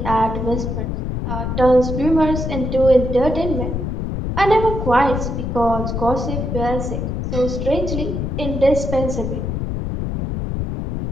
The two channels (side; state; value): left; noise; rumble, 2 dB below the sound